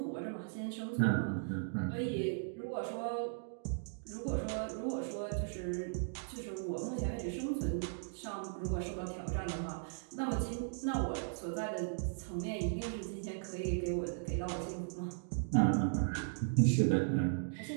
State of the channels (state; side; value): silent; left; digital silence